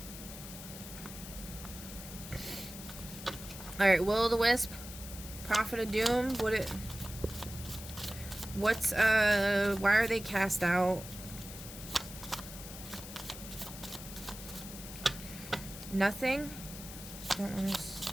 Alright, Will-o'-the-Wisp. Prophet of Doom. Why are they cast out? Nothing? Don't want to...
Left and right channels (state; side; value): noise; left; hiss, 12 dB below the sound